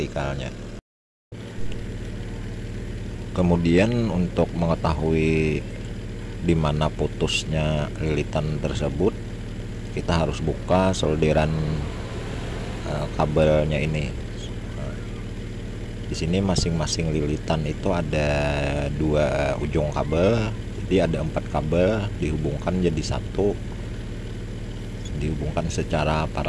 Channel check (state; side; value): identical; both; correlation 1.00